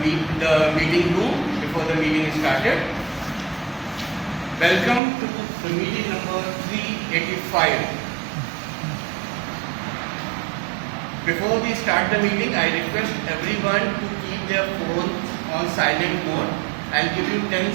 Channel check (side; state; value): left; drops out; at 5.0 s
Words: room before the meeting is started. Welcome to the meeting number 385. Before we start the meeting, I request everyone to keep their phone on silent mode. I'll give you 10